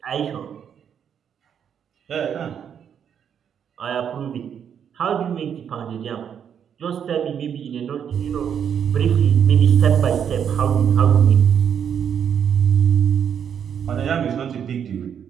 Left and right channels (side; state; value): left; quieter; 8.2 dB